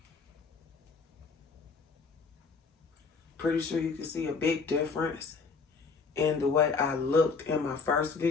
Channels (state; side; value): quieter; right; 4.8 dB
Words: Pretty sure you can see a big difference in the way I looked in my first